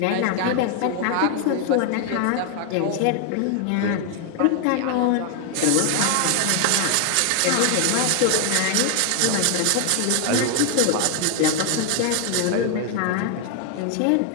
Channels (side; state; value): both; different; correlation 0.00